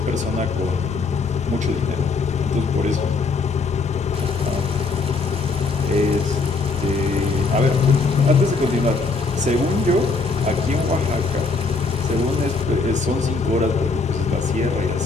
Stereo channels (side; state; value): right; quieter; 4.2 dB